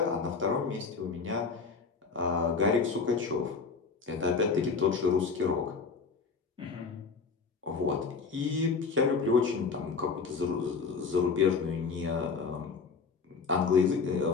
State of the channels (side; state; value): right; quieter; 5.0 dB